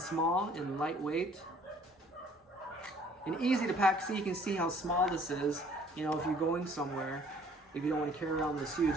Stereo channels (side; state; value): both; normal; correlation 0.56